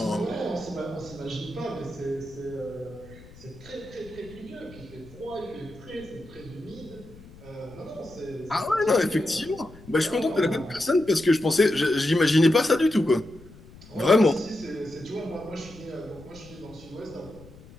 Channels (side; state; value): left; noise; rumble, 20 dB below the sound